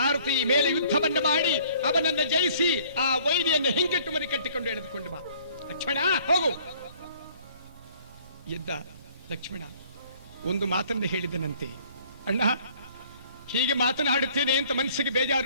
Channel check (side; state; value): both; inverted; correlation -0.57